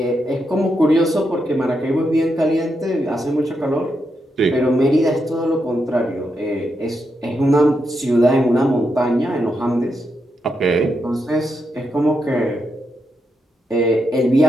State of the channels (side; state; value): both; normal; correlation 0.83